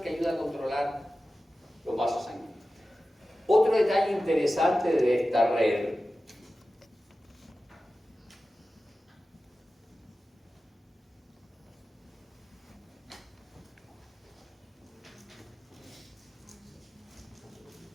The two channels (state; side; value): normal; both; correlation 0.94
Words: que ayuda a controlar los vasos sanguíneos. Otro detalle interesante de esta red